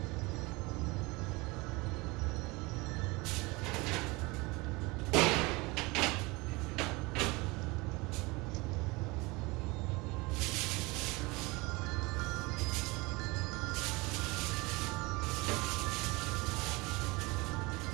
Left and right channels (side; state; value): left; quieter; 24.4 dB